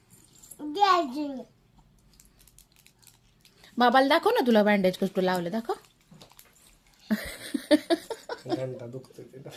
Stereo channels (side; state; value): both; identical; correlation 1.00